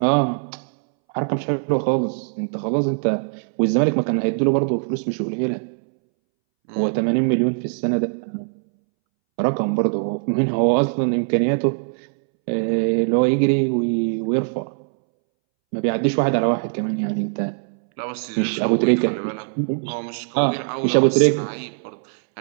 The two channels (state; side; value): silent; left; 64 dB below the other